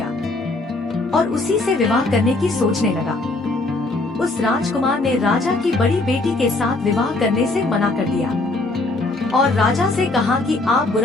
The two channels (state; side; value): quieter; right; 3.0 dB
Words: और उसी से विवाह करने की सोचने लगा। उस राजकुमार ने राजा की बड़ी बेटी के साथ विवाह करने से मना कर दिया और राजा से कहा कि आप